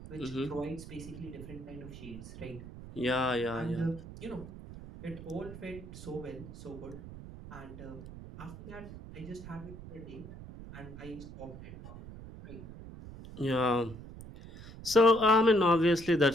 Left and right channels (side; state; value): right; noise; rumble, 13 dB below the sound